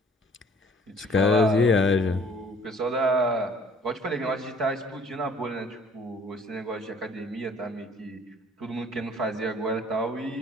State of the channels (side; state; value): both; normal; correlation 0.55